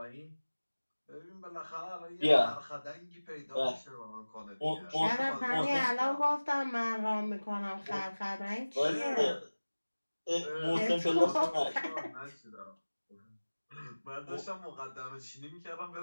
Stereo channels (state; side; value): inverted; both; correlation -1.00